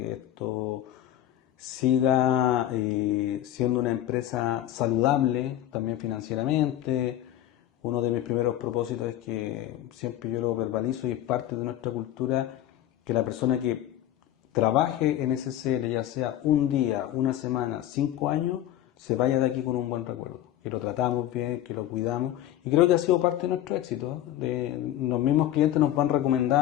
esto siga siendo una empresa saludable también financieramente. Uno de mis primeros propósitos es que siempre yo lo verbalizo y es parte de nuestra cultura que la persona que trabaje en SCL, ya sea un día, una semana, 5 años, se vaya de aquí con un buen recuerdo, que lo tratamos bien, que lo cuidamos, y creo que ha sido parte de nuestro éxito. Los mismos clientes nos van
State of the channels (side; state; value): right; quieter; 12.6 dB